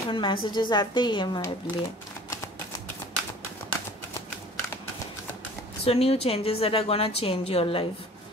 मैसेजेस आते ही है मेरे लिए। So new changes that are gonna change your life.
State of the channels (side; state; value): both; normal; correlation 0.47